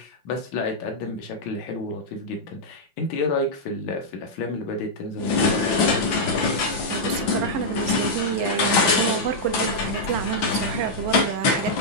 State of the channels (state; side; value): late; right; 6.0 ms